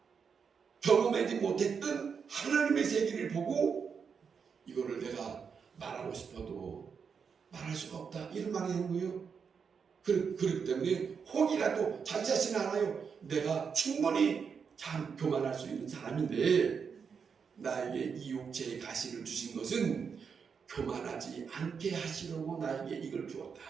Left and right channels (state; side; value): quieter; left; 6.2 dB